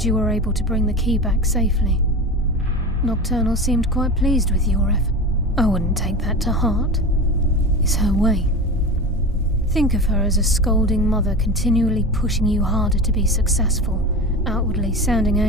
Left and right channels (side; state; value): both; normal; correlation 0.28